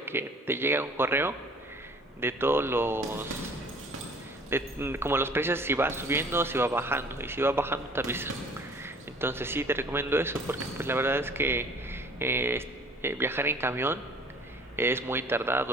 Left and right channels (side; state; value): both; normal; correlation 0.51